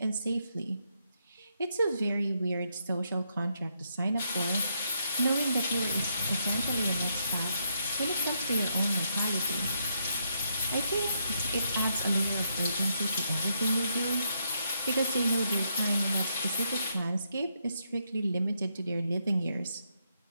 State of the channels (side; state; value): both; inverted; correlation -0.77